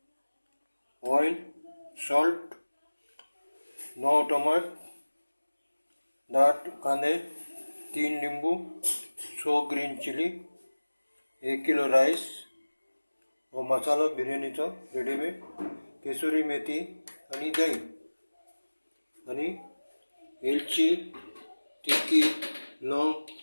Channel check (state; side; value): inverted; both; correlation -1.00